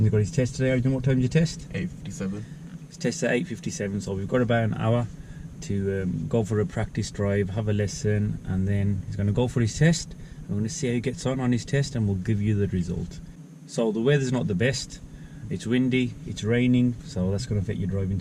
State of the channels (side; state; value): both; identical; correlation 1.00